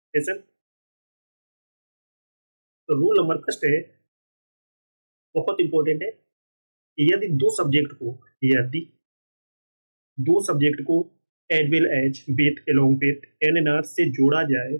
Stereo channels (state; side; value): inverted; both; correlation -1.00